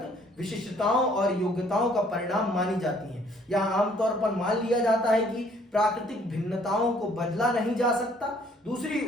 विशिष्टताओं और योग्यताओं का परिणाम मानी जाती हैं। यहाँ आमतौर पर मान लिया जाता है कि प्राकृतिक भिन्नताओं को बदला नहीं जा सकता। दूसरी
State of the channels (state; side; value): normal; both; correlation 0.61